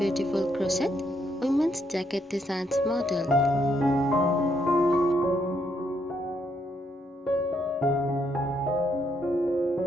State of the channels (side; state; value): both; normal; correlation 0.75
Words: crochet women's jacket designs model.